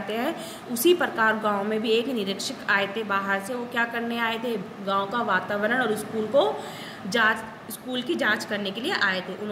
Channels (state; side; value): identical; both; correlation 1.00